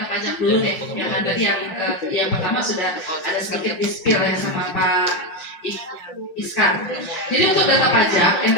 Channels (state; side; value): late; right; 5.7 ms